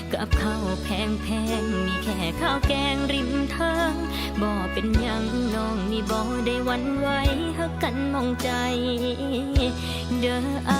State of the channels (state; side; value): identical; both; correlation 1.00